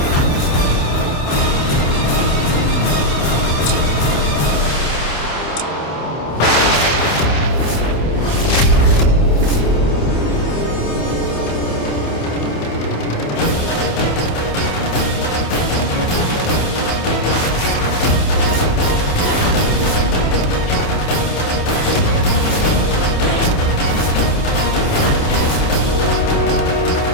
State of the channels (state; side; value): late; right; 27 ms